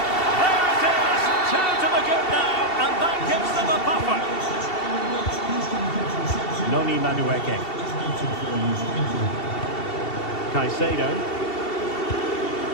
There it is! 2 to the good now, and that gives them a buffer. Noni Madueke. Caicedo.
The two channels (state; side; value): late; right; 2.7 ms